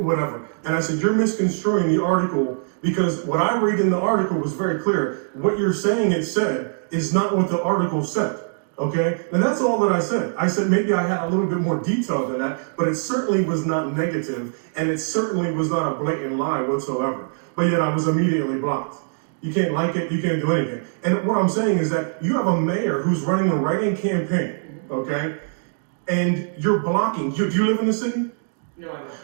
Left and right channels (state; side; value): silent; left; digital silence